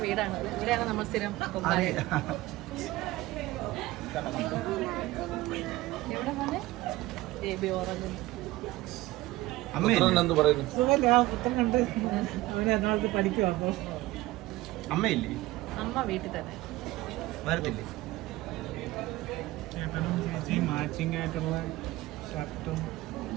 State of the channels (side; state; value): left; quieter; 18.4 dB